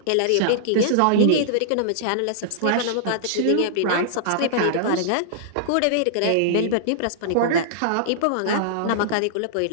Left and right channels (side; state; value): both; different; correlation -0.02